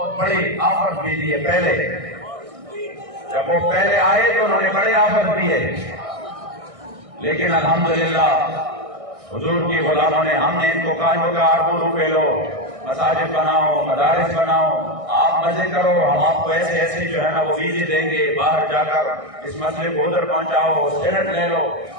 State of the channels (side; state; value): left; late; 1.6 ms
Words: بڑے آفر بھی دیے. پہلے جب وہ پہلے آئے تو انہوں نے بڑے آفر دیے, لیکن الحمدللہ حضور کی غلاموں نے, ہم نے ان کو کہا اربوں روپے لو, مساجد بناؤ، مدارس بناؤ، آپ مزے کرو، ہم آپ کو ایسے ایسے جو ہے نا وہ ویزے دیں گے، باہر جا کر اس مسئلے کو ادھر پہنچاؤ، سینٹ لے لو،